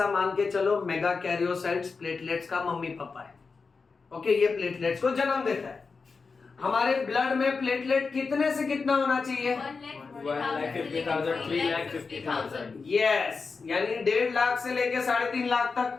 मान के चलो मेगा कैरियोसाइट्स प्लेटलेट्स का मम्मी पापा है, ओके। ये प्लेटलेट्स को जन्म देता है। हमारे ब्लड में प्लेटलेट कितने से कितना होना चाहिए? 1,50,000, 3,50,000। यस, यानी 1.5 लाख से लेके 3.5 लाख तक।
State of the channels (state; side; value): quieter; right; 4.7 dB